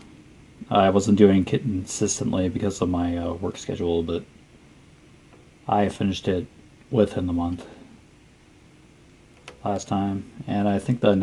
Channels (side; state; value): both; identical; correlation 1.00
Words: I wasn't doing it consistently because of my work schedule, but I finished it within the month last time, and I think the